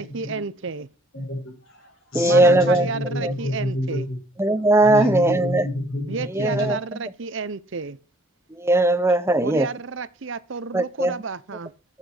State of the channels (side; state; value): both; normal; correlation 0.60